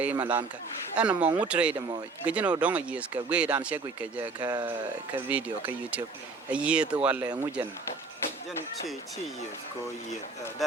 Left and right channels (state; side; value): quieter; left; 4.1 dB